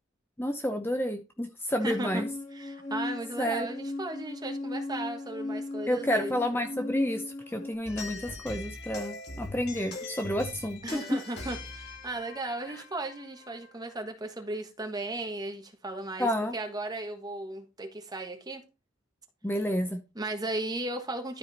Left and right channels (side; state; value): both; normal; correlation 0.68